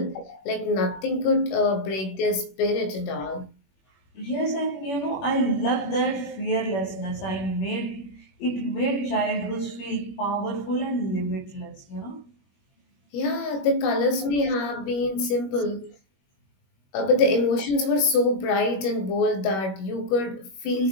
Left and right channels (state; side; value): late; right; 21 ms